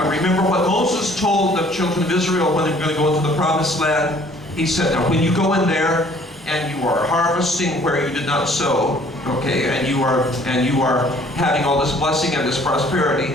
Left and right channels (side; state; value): both; normal; correlation 0.57